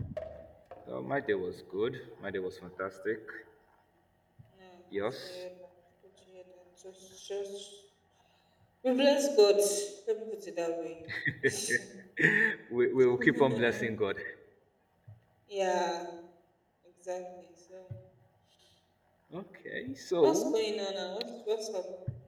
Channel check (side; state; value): both; identical; correlation 1.00